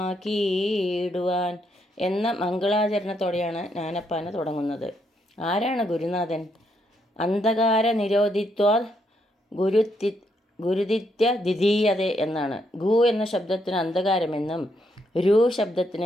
എന്ന മംഗളാചരണത്തോടെയാണ് ജ്ഞാനപ്പാന തുടങ്ങുന്നത്. ആരാണ് ഗുരുനാഥൻ? അന്ധകാര നിരോധിത്വാൽ ഗുരുദിത്യ ദ്വിതീയത എന്നാണ്. ഗു എന്ന ശബ്ദത്തിന് അന്ധകാരമെന്നും രു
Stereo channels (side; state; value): both; normal; correlation 0.76